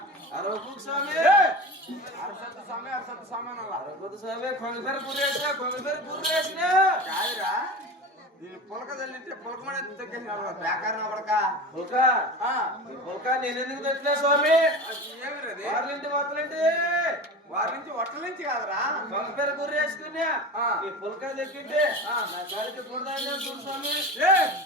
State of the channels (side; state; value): both; normal; correlation 0.30